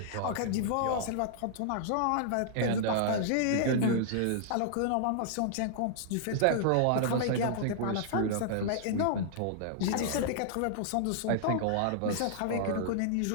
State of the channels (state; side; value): different; both; correlation -0.01